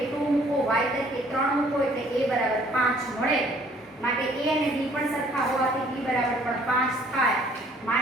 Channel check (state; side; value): normal; both; correlation 0.59